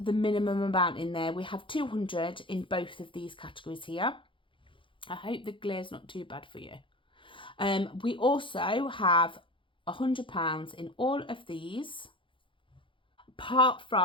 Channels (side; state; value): right; late; 0.25 ms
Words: the minimum amount in there. We have 200 in both of these categories here. I hope the glare's not too bad for you. We also have £100 in all of these, apart